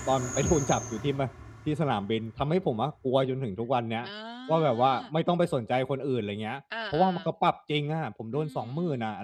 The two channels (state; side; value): identical; both; correlation 1.00